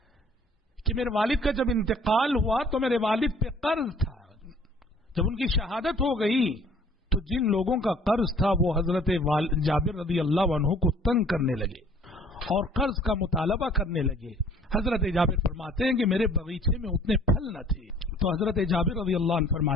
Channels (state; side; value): normal; both; correlation 0.54